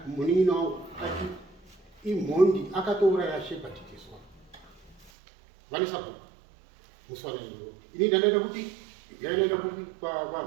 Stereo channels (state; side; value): drops out; left; at 5.1 s